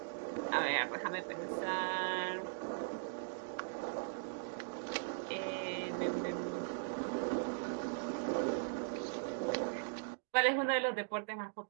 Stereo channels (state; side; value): silent; left; digital silence